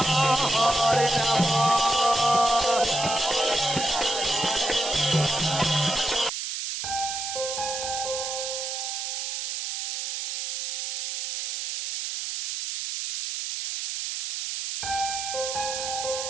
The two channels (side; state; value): right; noise; hiss, 3 dB below the sound